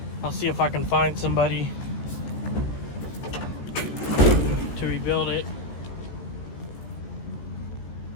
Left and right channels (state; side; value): late; right; 16 ms